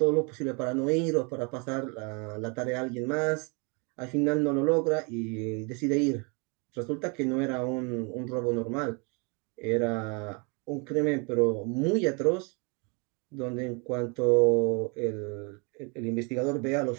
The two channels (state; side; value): quieter; left; 32.9 dB